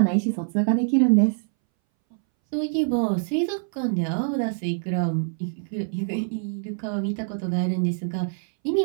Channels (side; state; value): left; silent; 62 dB below the other